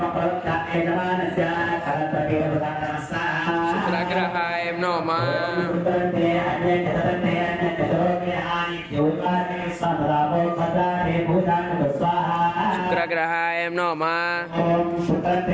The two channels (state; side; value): identical; both; correlation 1.00